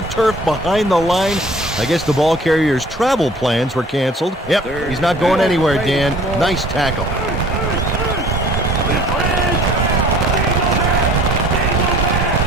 turf behind the line. I guess the ball carrier's travel plans were canceled. Yep, he's not going anywhere, Dan. Nice tackle.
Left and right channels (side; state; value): both; normal; correlation 0.52